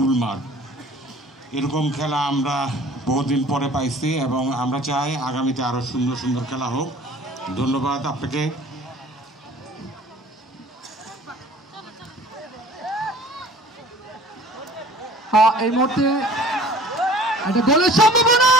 মাঠ, এরকম খেলা আমরা বহুদিন পরে পাইছি এবং আমরা চাই আগামীতে আরও সুন্দর সুন্দর খেলা হোক। ধন্যবাদ আপনাকে। এই মুহূর্তে একটা গোলের সম্ভাবনা,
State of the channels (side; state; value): both; normal; correlation 0.48